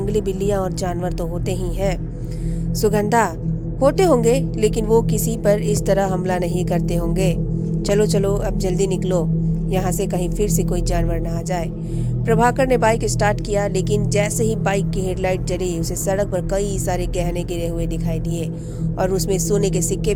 बिल्लियां और जानवर तो होते ही हैं। सुगंधा, होते होंगे, लेकिन वो किसी पर इस तरह हमला नहीं करते होंगे। चलो चलो अब जल्दी निकलो यहाँ से, कहीं फिर से कोई जानवर ना आ जाए। प्रभाकर ने बाइक स्टार्ट किया, लेकिन जैसे ही बाइक की हेडलाइट जली उसे सड़क पर कई सारे गहने गिरे हुए दिखाई दिए और उसमें सोने के सिक्के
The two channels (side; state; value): both; identical; correlation 1.00